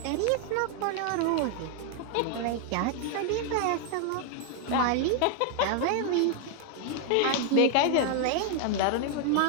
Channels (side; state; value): both; different; correlation 0.00